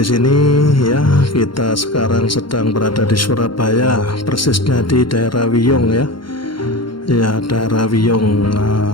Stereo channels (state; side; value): late; right; 0.73 ms